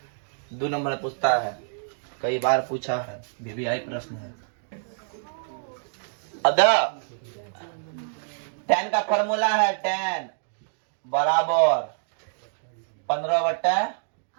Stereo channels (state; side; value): silent; left; digital silence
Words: 2 नंबर पूछता है, कई बार पूछा है, VVI प्रश्न है। अब tan का फॉर्मूला है tan बराबर